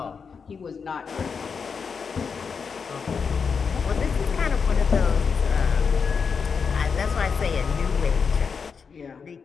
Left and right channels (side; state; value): right; quieter; 5.8 dB